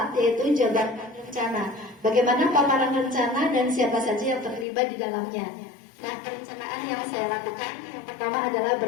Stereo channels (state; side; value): drops out; right; at 4.7 s